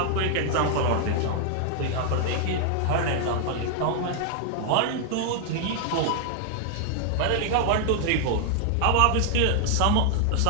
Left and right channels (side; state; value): both; different; correlation 0.00